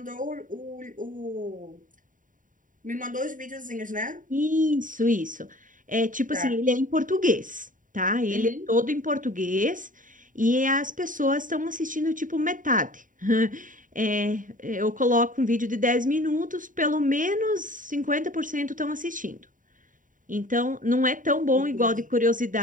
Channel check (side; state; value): left; late; 0.38 ms